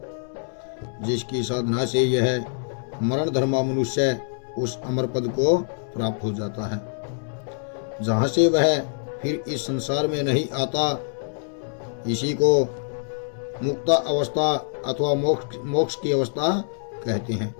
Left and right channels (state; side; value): silent; right; digital silence